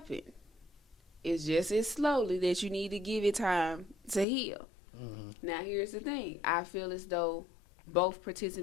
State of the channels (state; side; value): drops out; right; at 4.2 s